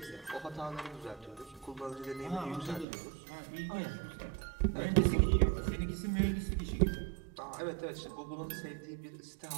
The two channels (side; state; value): left; drops out; at 2.9 s